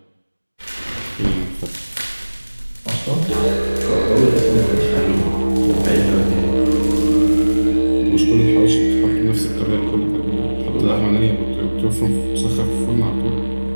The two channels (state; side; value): inverted; both; correlation -1.00